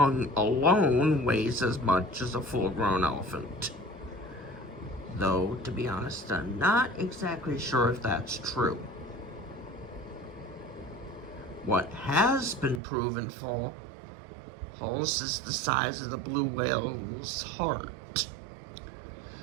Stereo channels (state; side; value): drops out; left; at 12.8 s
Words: alone weighs as much as a full-grown elephant. Though, to be honest, I'm not exactly sure if that's true. What has been proven false is the size of the blue whale's heart.